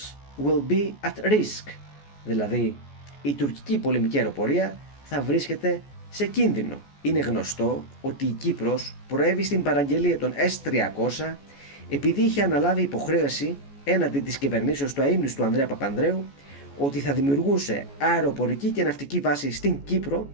will be at risk, δηλαδή η τουρκική πολεμική αεροπορία θα βρίσκεται σε κίνδυνο. Είναι γνωστό ότι η Κύπρος προέβη στην παραγγελία των S-300 επειδή είχε αναλάβει υποχρέωση έναντι της κυβερνήσεως του αείμνηστου Ανδρέα Παπανδρέου ότι θα δημιουργούσε αεροπορική και ναυτική βάση στην Κύπρο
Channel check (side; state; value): right; late; 14 ms